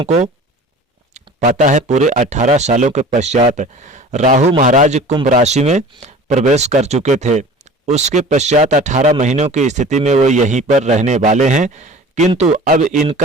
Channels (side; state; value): both; normal; correlation 0.41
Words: को पता है पूरे 18 सालों के पश्चात राहु महाराज कुंभ राशि में प्रवेश कर चुके थे। उसके पश्चात 18 महीनों की स्थिति में वो यहीं पर रहने वाले हैं, किंतु अब